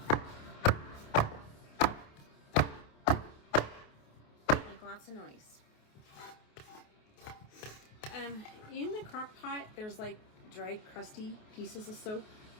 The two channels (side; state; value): right; late; 28 ms